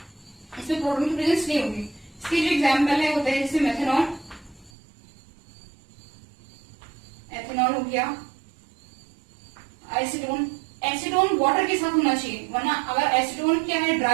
इसमें प्रोटोन की प्रेजेंस नहीं होगी। इसकी जो एग्जाम्पल है होता है जैसे मेथनॉल, एथेनॉल हो गया, एसीटोन। एसीटोन वाटर के साथ होना चाहिए, वरना अगर एसीटोन क्या है,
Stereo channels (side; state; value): left; drops out; at 4.7 s